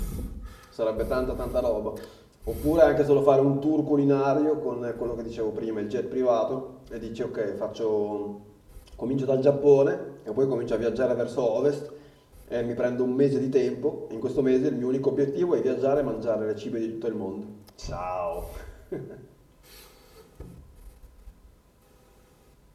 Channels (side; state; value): both; identical; correlation 1.00